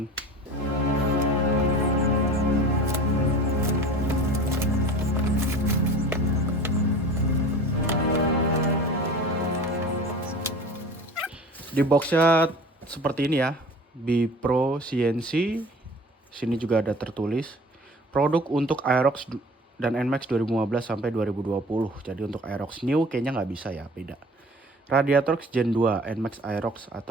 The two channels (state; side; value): normal; both; correlation 0.41